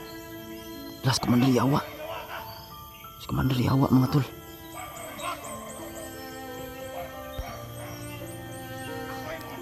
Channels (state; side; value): identical; both; correlation 1.00